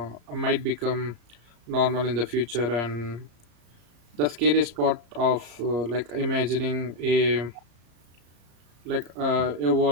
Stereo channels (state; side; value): late; left; 34 ms